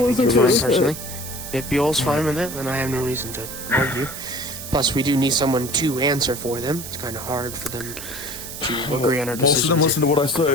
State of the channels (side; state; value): right; noise; hiss, 10 dB below the sound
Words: if Buell's fine with it, then I have no reason to argue. Plus, we do need someone to answer for them. It's kind of hard for them to agree on our decisions. Most of them listen to what I